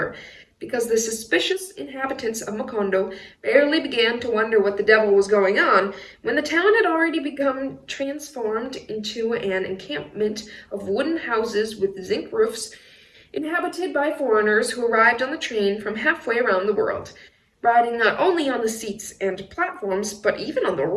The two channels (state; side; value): identical; both; correlation 1.00